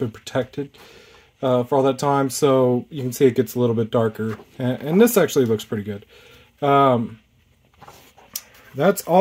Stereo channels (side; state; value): both; identical; correlation 1.00